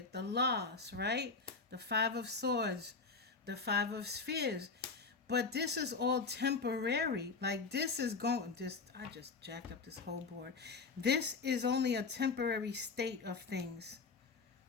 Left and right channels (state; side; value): quieter; right; 4.5 dB